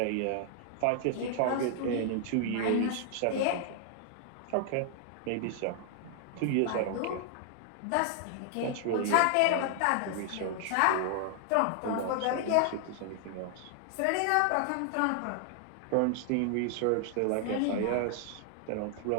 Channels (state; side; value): different; both; correlation 0.00